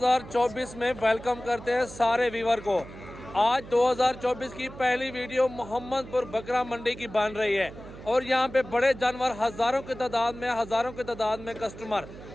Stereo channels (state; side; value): noise; right; hum, 15 dB below the sound